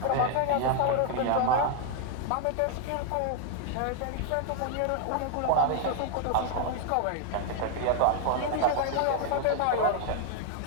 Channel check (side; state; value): both; different; correlation 0.00